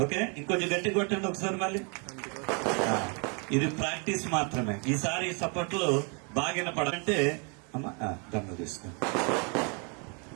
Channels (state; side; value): quieter; left; 35.1 dB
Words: ఓకే, ఇంకొంచెం గట్టి కొట్టండి ఒకసారి మళ్ళీ. ఇది ప్రాక్టీస్ మాత్రమే. ఈసారి సపోర్ట్లు బాగా వినపడాలంటే అమ్మ దండ తీసుకో.